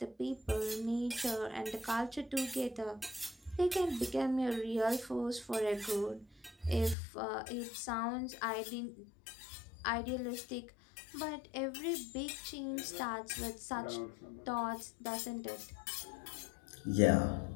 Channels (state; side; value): drops out; right; at 7.0 s